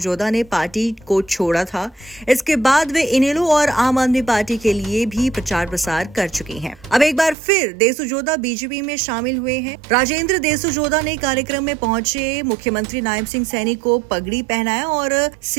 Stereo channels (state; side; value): drops out; left; at 7.4 s